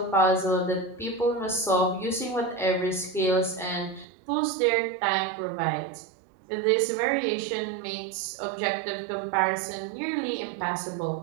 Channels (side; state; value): left; drops out; at 4.0 s